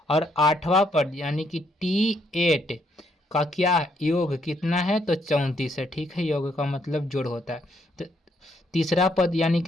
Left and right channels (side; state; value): both; normal; correlation 0.72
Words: और आठवां पद यानी कि t8 का क्या योग कितना है, तो 34 है। ठीक है, योग का मतलब जोड़ होता है। तो तीसरा पद यानी